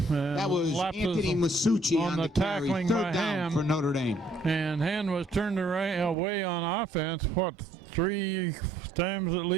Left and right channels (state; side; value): drops out; left; at 6.2 s